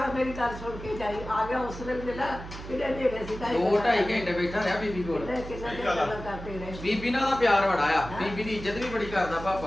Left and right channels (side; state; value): right; noise; hum, 11 dB below the sound